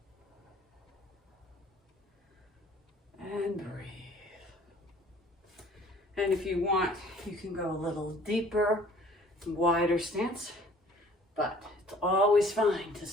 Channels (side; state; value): both; normal; correlation 0.53